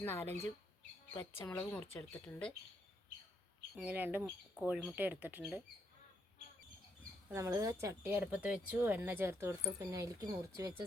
4-5 പച്ചമുളക് മുറിച്ചെടുത്തിട്ടുണ്ട്, ഇങ്ങനെ 2 കോഴിമുട്ട എടുത്തിട്ടുണ്ട്. അപ്പോൾ നമ്മൾ ചട്ടി അടുപ്പത്ത് വെച്ചു, എണ്ണ ചേർത്ത് കൊടുത്തു. പിന്നെ അതിലേക്ക് മുറിച്ച്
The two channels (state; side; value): normal; both; correlation 0.76